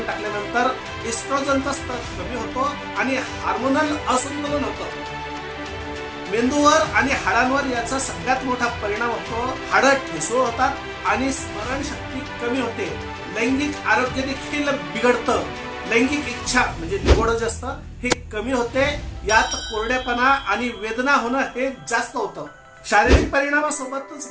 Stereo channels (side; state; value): both; identical; correlation 1.00